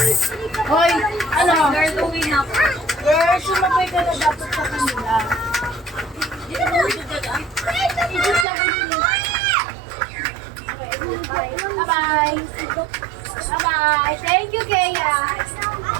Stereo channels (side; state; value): left; drops out; at 8.5 s